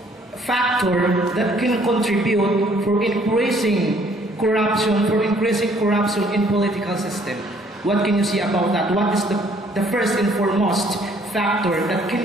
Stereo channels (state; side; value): normal; both; correlation 0.62